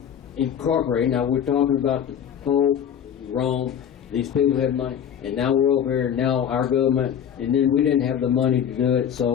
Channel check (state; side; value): quieter; right; 8.7 dB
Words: incorporated. Now we're talking about the Pope, Rome, these people had money, and now we're over here, now our government, and then we didn't have the money to do it,